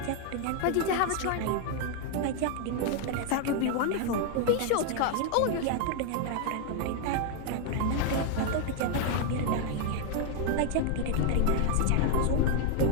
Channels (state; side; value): different; both; correlation 0.00